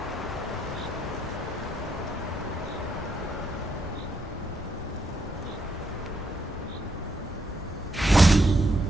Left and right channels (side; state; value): both; normal; correlation 0.77